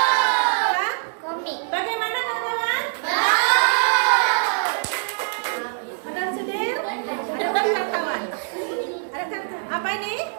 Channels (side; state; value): left; silent; digital silence